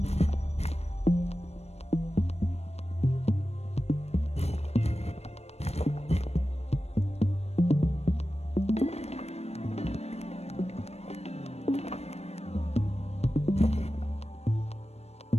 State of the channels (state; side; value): late; right; 0.31 ms